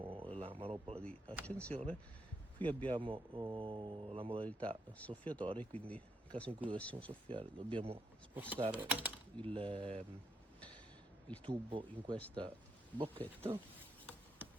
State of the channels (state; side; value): normal; both; correlation 0.79